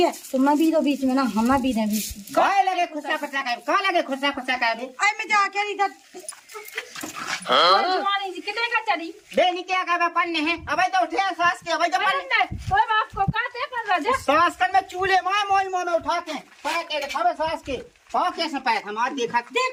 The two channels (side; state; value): both; identical; correlation 1.00